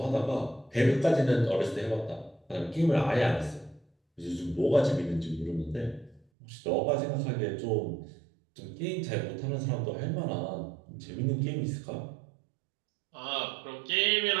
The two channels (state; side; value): drops out; left; at 6.2 s